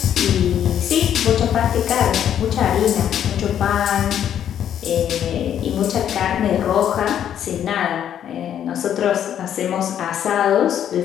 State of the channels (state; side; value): quieter; right; 9.8 dB